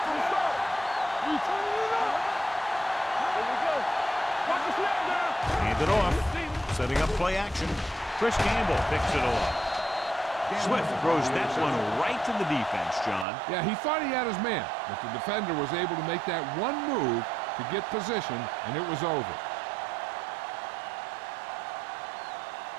We turn it up. Here we go. Watch the snap now. Hand it off. Setting up play action. Chris Campbell picks it off. Swift throws that one right to the defense, John. Yeah, he thought he had his man, but the defender was able to make that one move to get position, and it was over.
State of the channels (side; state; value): left; drops out; at 13.2 s